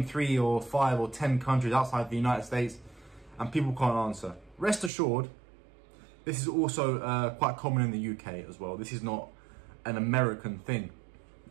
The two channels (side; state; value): left; drops out; at 4.9 s